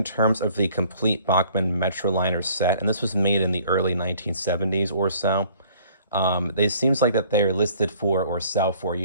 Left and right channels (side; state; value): both; inverted; correlation -0.56